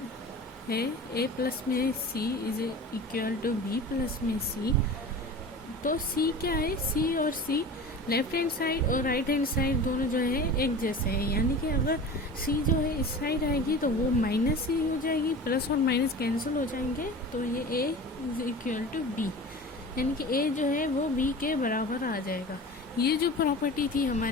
है A प्लस में C is equal to B plus में C, तो C क्या है, C और C लेफ्ट हैंड साइड और राइट हैंड साइड दोनों जो है एक जैसे हैं। यानी कि अगर C जो है इस साइड आएगी तो वो माइनस C हो जाएगी, प्लस और माइनस कैंसिल हो जाएंगे, तो ये A is equal to B, यानी कि A जो है वो B के बराबर आ जाएगा। ये जो प्रॉपर्टी थी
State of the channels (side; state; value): both; normal; correlation 0.36